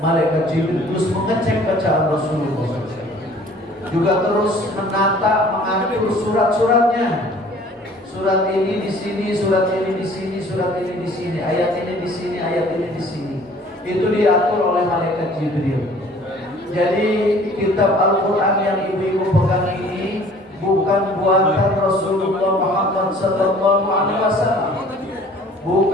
Jibril terus mengecek bacaan Rasulullah, juga terus menata, mengatur surat-suratnya. Surat ini di sini, surat ini di sini, surat ini di sini, ayat ini di sini, ayat ini di sini. Itu diatur oleh malaikat Jibril. Jadi kitab Al-Quran yang ibu-ibu pegang ini bukan buatan Rasulullah Muhammad sallallahu alaihi wasallam,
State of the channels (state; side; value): normal; both; correlation 0.52